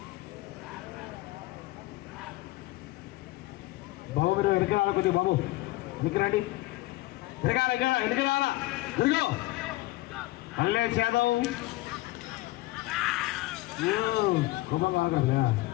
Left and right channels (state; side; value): quieter; right; 19.2 dB